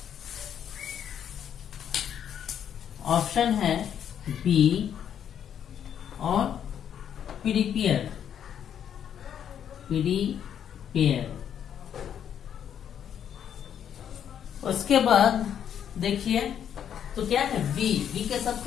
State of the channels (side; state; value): right; quieter; 9.1 dB